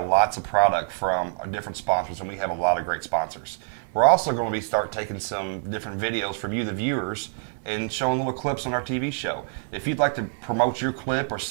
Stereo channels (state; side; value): silent; left; digital silence